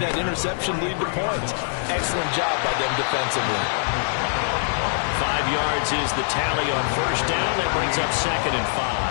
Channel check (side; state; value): right; silent; digital silence